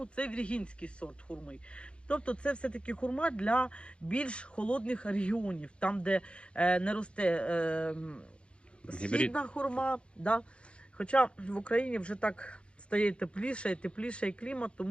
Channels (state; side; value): late; right; 0.058 ms